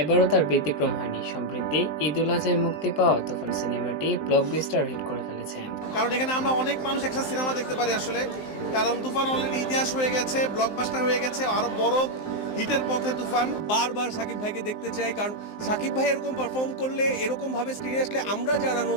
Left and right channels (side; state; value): right; late; 19 ms